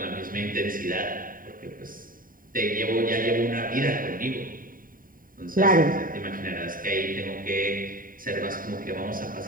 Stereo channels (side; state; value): left; late; 0.41 ms